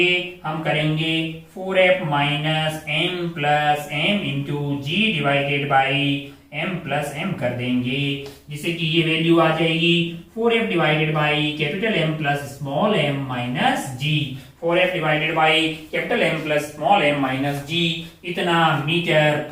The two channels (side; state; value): both; identical; correlation 1.00